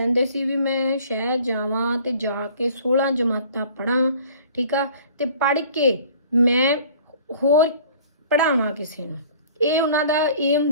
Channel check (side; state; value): both; inverted; correlation -0.50